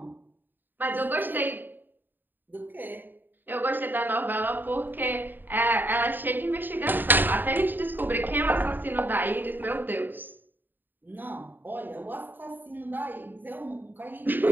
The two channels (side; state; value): left; late; 0.092 ms